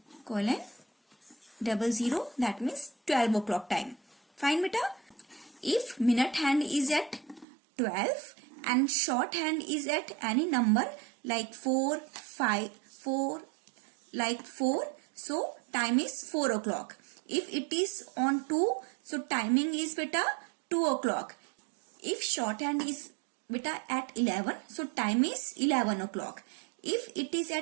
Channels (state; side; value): drops out; left; at 7.5 s